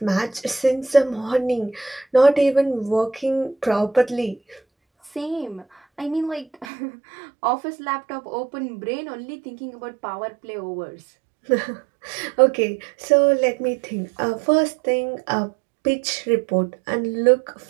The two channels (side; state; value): left; drops out; at 6.7 s